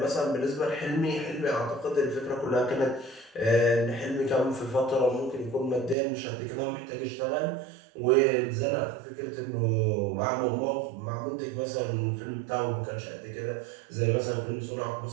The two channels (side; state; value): left; drops out; at 6.0 s